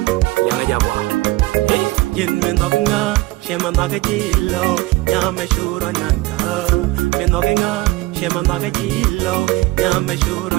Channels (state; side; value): quieter; left; 19.4 dB